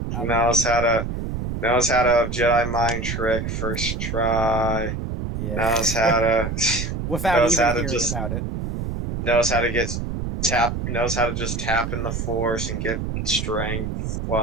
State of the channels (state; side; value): noise; right; rumble, 4 dB below the sound